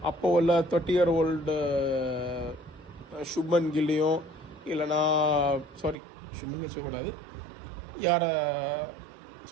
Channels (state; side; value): drops out; left; at 6.0 s